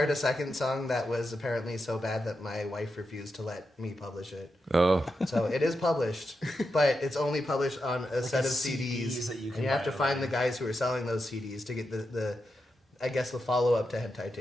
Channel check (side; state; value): both; normal; correlation 0.87